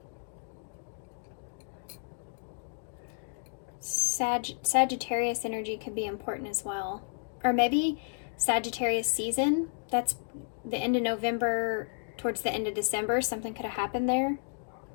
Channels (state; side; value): silent; right; digital silence